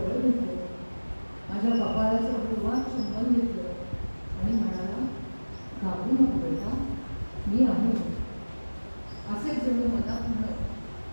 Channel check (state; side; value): inverted; both; correlation -1.00